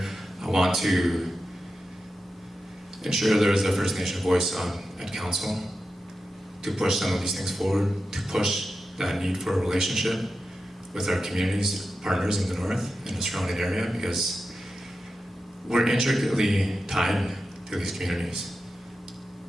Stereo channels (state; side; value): normal; both; correlation 0.90